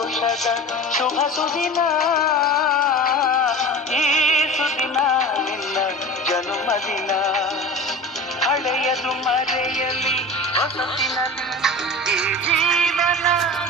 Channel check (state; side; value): normal; both; correlation 0.34